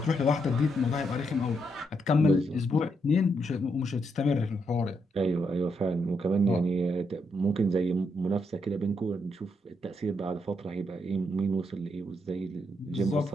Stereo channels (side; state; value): both; normal; correlation 0.79